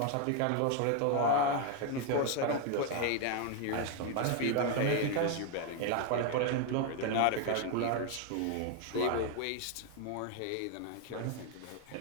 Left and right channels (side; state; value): both; different; correlation 0.01